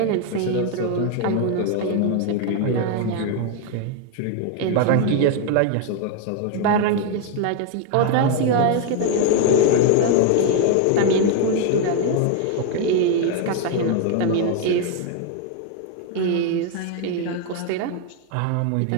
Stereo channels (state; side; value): different; both; correlation 0.00